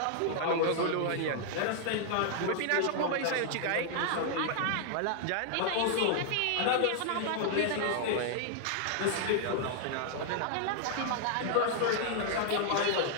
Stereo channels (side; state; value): both; different; correlation 0.00